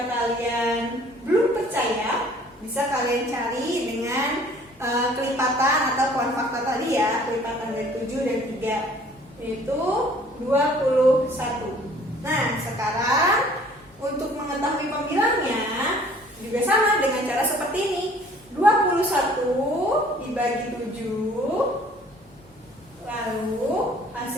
kalian belum percaya, bisa kalian cari dengan kelipatan atau kuan fakta tadi ya, kelipatan dari 7 dan 3, yaitu 21. Nah, sekarang untuk mengetahui pembilangnya juga sama dengan cara seperti ini. 21 dibagi 7, lalu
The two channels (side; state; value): both; normal; correlation 0.54